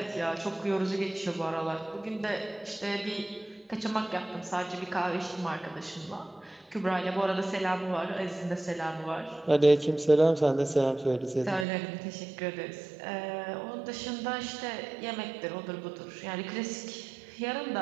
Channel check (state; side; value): drops out; left; at 11.7 s